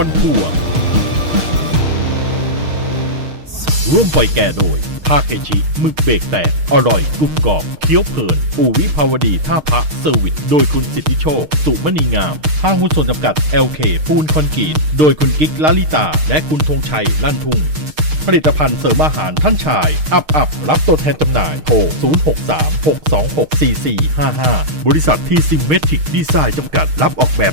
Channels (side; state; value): left; late; 6.5 ms